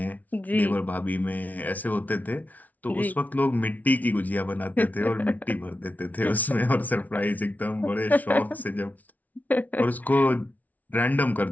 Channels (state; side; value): late; right; 0.074 ms